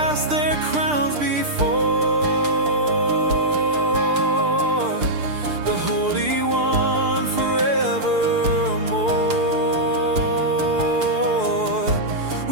their crowns before the Holy One forevermore.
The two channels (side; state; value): left; late; 6.7 ms